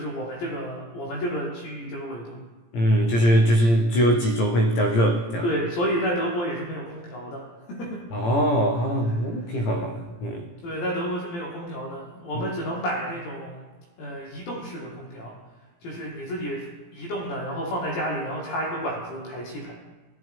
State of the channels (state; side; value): late; right; 17 ms